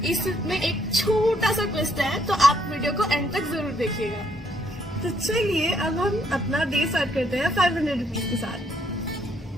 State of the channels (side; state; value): both; normal; correlation 0.71